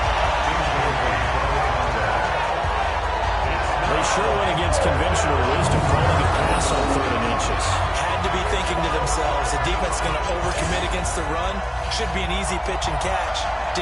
They sure went against conventional wisdom, calling a pass on 3rd and inches. Had to be thinking to themselves, the defense is going to overcommit against the run. Should be an easy pitch and catch.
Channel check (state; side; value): identical; both; correlation 1.00